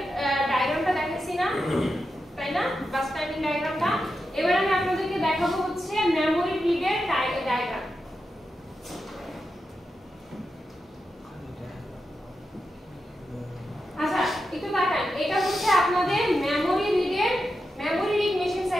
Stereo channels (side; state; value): both; normal; correlation 0.89